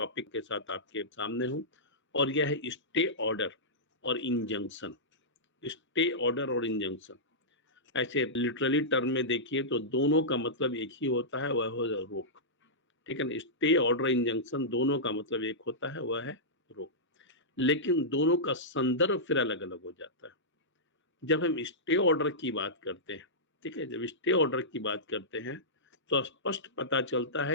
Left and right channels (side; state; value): both; normal; correlation -0.14